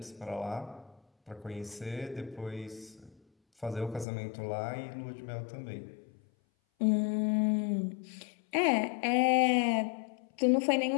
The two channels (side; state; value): right; drops out; at 4.0 s